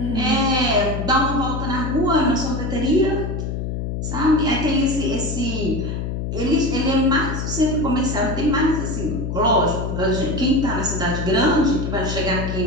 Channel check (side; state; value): left; noise; hum, 3 dB below the sound